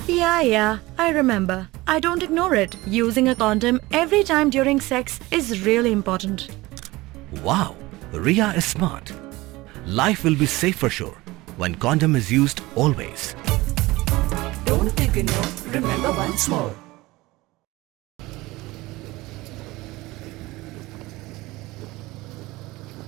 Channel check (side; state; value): left; quieter; 20.2 dB